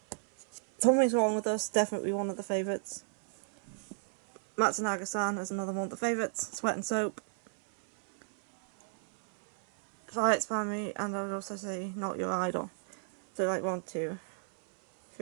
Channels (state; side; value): silent; left; 56 dB below the other